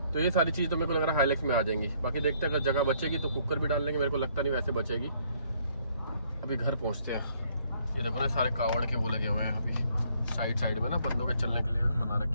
तो ये सारी चीज तो मेरे को लग रहा है हाईलैक्स में आ जाएंगी। बाकी देखते हैं अगर जगह बचेगी तो कुकर भी डाल लेंगे, मेरे को लगता नहीं वैसे बचेगी। अभी घर पहुंचते हैं। ये देखो ना सारे कावड़ के वो लगे हुए हैं अभी साइड में ना, बंदों के चलने के लिए बना रखे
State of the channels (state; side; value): inverted; both; correlation -0.66